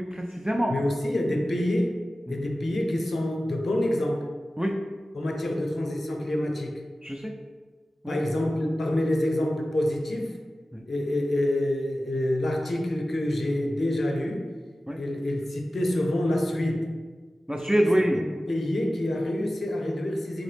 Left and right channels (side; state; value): both; normal; correlation 0.95